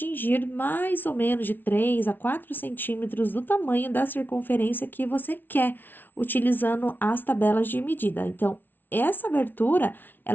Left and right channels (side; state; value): right; late; 0.093 ms